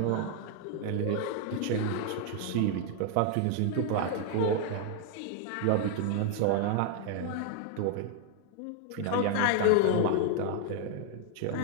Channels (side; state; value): both; different; correlation 0.00